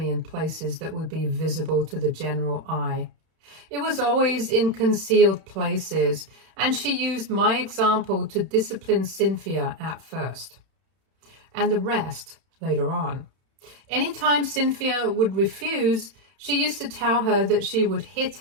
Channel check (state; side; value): late; left; 31 ms